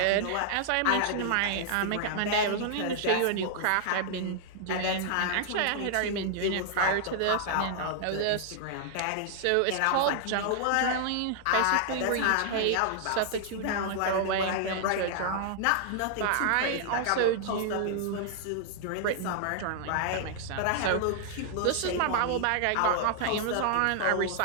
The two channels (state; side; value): different; both; correlation -0.01